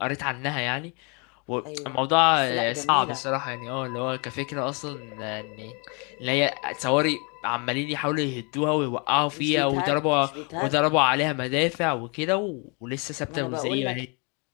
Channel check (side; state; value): right; quieter; 33.2 dB